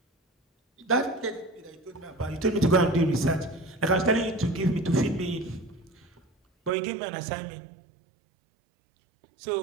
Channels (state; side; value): drops out; left; at 6.7 s